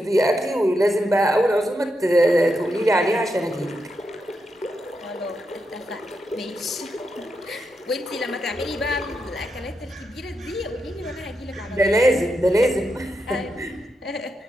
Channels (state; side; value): normal; both; correlation 0.85